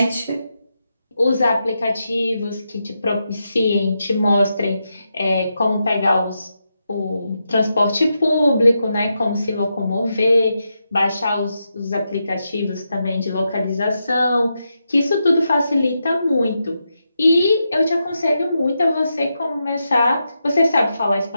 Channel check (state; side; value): inverted; both; correlation -0.86